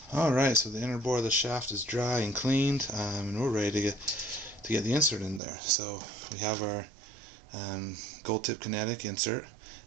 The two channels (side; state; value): left; drops out; at 5.4 s